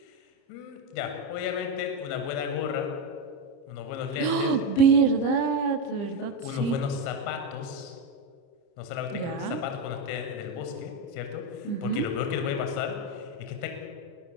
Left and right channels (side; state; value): right; late; 30 ms